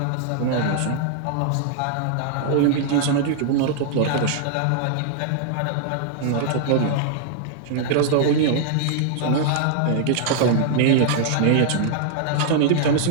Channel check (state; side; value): different; both; correlation -0.01